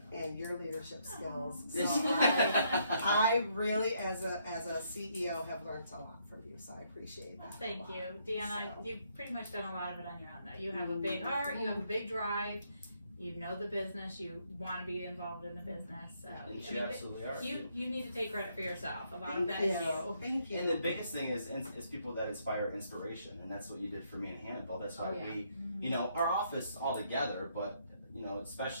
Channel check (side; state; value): both; inverted; correlation -0.72